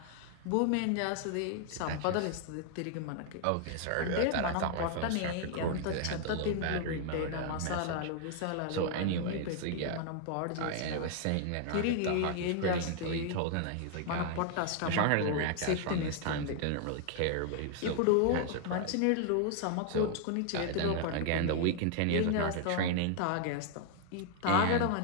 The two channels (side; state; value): both; different; correlation 0.00